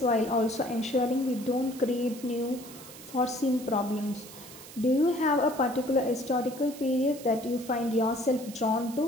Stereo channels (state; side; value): noise; right; hiss, 16 dB below the sound